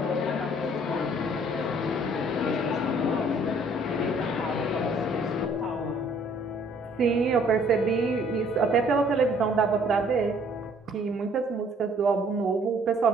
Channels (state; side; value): normal; both; correlation 0.60